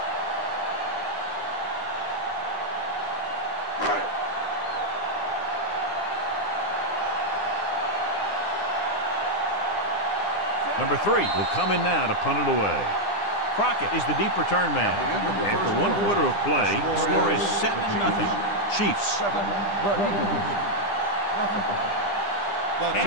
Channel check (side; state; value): right; late; 9.9 ms